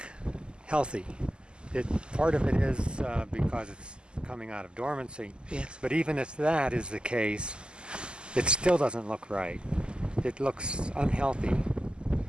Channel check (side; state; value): left; late; 0.049 ms